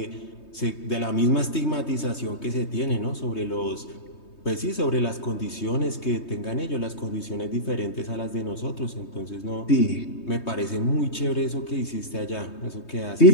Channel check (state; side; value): late; right; 3.2 ms